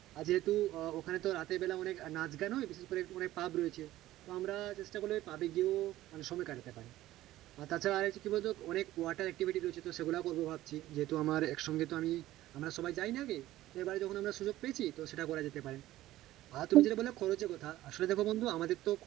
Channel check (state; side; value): quieter; left; 15.3 dB